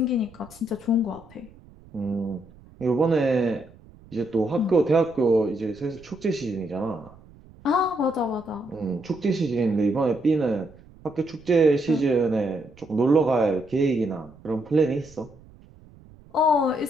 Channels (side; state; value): right; noise; rumble, 24 dB below the sound